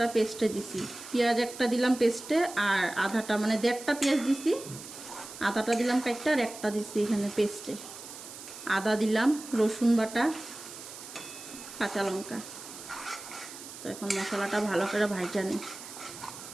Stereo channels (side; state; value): right; noise; hiss, 13 dB below the sound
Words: পেস্টে দিছি। পেঁয়াজ একটা দিলাম পেস্টে, আর আধাটা মানে 1.5টা পেঁয়াজ দিছি, আধাটা দিলাম কাইটা, আর একটা দিছি এখানে পেস্টে। আদা দিলাম, রসুন বাটা, কাঁচা লঙ্কা। তো এখন মশলাটা ভালো করে ভাজা নিই।